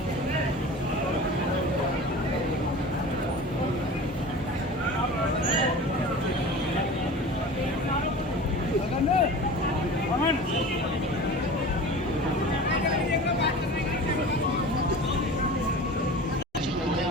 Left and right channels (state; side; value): normal; both; correlation 0.36